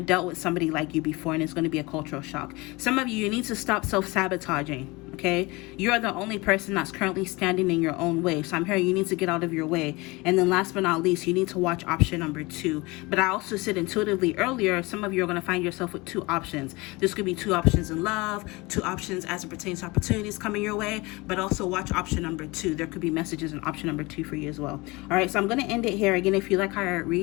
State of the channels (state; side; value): quieter; right; 23.9 dB